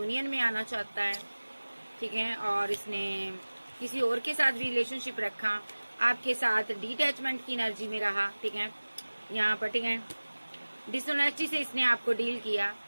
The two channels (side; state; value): both; inverted; correlation -1.00